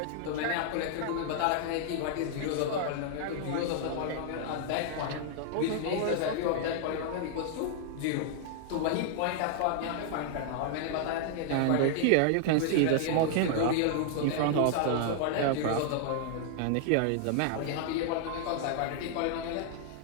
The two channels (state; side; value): different; both; correlation -0.01